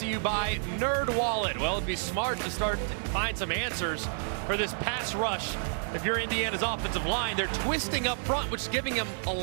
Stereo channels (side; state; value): left; silent; digital silence